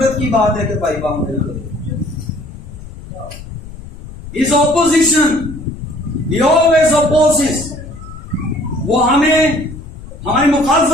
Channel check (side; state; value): left; noise; rumble, 14 dB below the sound